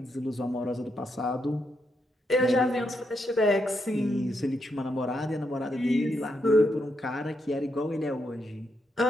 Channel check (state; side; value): normal; both; correlation 0.81